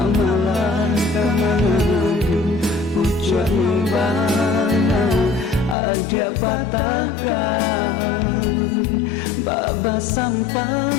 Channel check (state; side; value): drops out; right; at 5.8 s